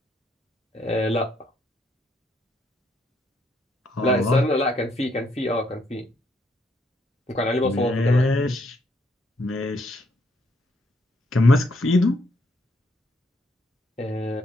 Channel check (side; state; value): both; normal; correlation 0.72